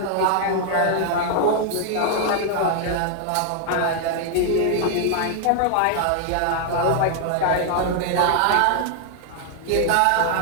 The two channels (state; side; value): different; both; correlation 0.00